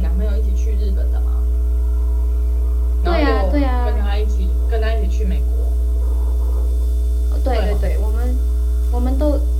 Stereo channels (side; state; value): both; identical; correlation 1.00